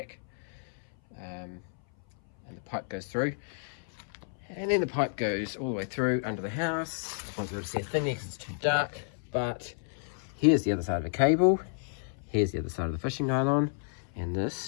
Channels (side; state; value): right; silent; 57 dB below the other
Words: and the pipe goes through, and then the pipe goes all the way through under the house. I won't be able to see a thing there because it's too dark, but here's the other side of the cable, here's the other side of the fishing nylon, and